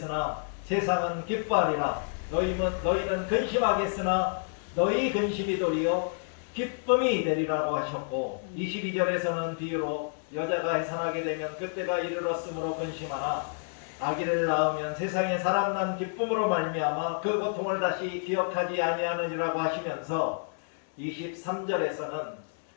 세상은 기뻐하리라. 너희는 근심하겠으나 너희 근심이 도리어 기쁨이 되리라고 하셨고, 22절에서는 비유로 여자가 해산하게 되면 그때가 이르렀으므로 근심하나 아기를 낳으면 세상에 사람 난 기쁨으로 말미암아 그 고통을 다시 기억하지 아니하느니라고 하시면서 23절에서는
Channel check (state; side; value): silent; right; digital silence